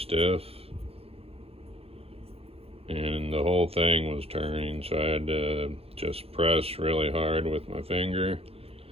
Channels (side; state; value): left; late; 0.28 ms